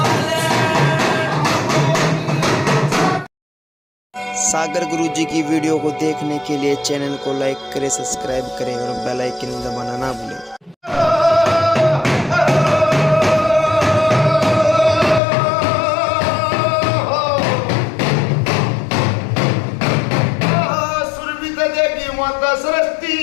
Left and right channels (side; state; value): right; drops out; at 15.2 s